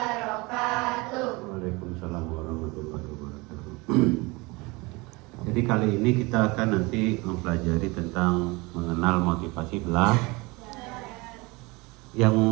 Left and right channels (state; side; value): quieter; left; 24.7 dB